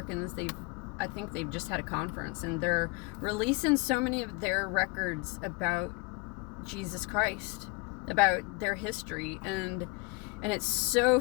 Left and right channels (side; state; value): right; quieter; 27.9 dB